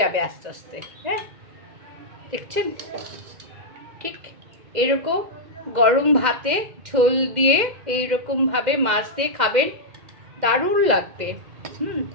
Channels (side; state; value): left; late; 2.0 ms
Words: আস্তে আস্তে। হ্যাঁ, দেখছেন, ঠিক এরকম গরম ভাতে ঝোল দিয়ে এইরকমভাবে মাছ দিয়ে খাবেন, দারুণ লাগবে।